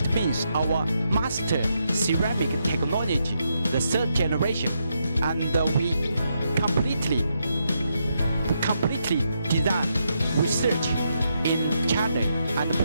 means our master ceramic technology, the third generation, and we completely design, research in China and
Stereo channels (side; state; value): both; inverted; correlation -0.80